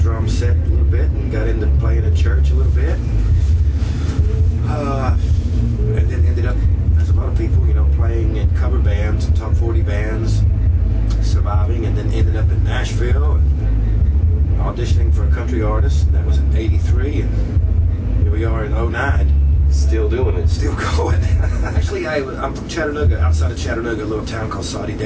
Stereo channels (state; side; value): identical; both; correlation 1.00